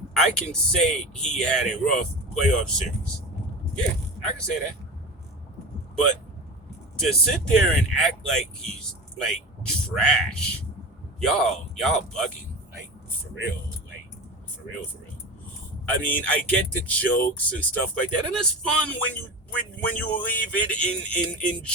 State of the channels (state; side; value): normal; both; correlation 0.28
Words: I can say he had a rough playoff series. Yeah, I can say that. But to sit there and act like he's like trash, y'all bugging, like for real, for real. I mean, I get the jokes and stuff like that, and it's fun when you leave it in